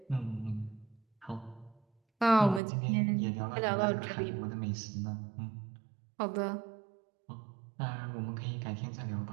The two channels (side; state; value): left; drops out; at 2.6 s